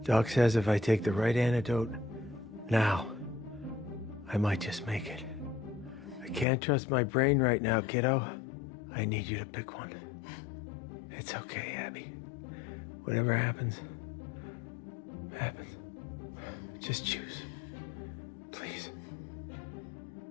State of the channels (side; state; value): right; drops out; at 6.5 s